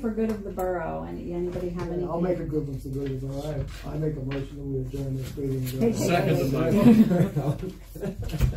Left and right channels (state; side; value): identical; both; correlation 1.00